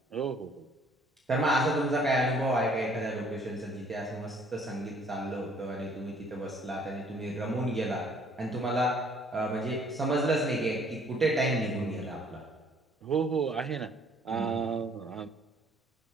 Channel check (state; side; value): normal; both; correlation 0.59